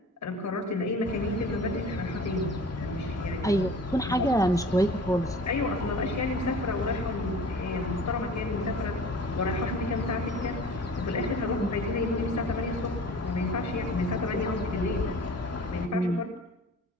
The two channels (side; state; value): both; normal; correlation 0.44